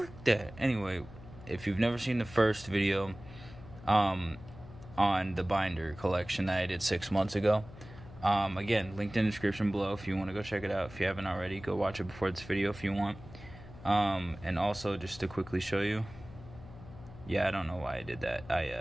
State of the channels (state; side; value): noise; left; hum, 17 dB below the sound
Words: that. Anyway, if you've never seen the first video on the binder collection that I did 6 months ago, again, linked in the description below if you want to go check it out. If you haven't already, go watch it before this video if you want. And also, just to quickly show you, yeah, I don't know why I did that.